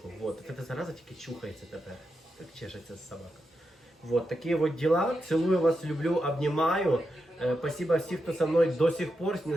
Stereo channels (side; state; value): both; normal; correlation 0.86